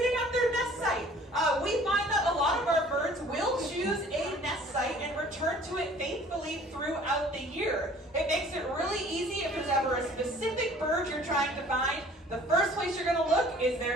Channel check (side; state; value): both; normal; correlation 0.52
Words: at their nest site. We find that a lot of our birds will choose a nest site and return to it faithfully throughout the year. It makes it really easy if there's ever a specific bird you're trying to find. The first place you're going to look is